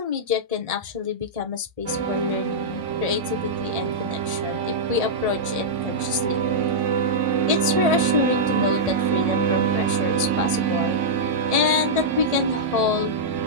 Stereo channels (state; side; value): late; left; 1.7 ms